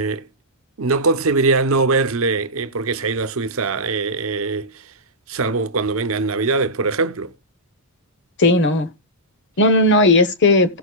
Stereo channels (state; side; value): normal; both; correlation -0.15